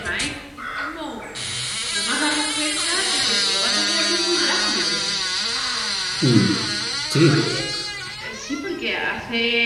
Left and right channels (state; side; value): identical; both; correlation 1.00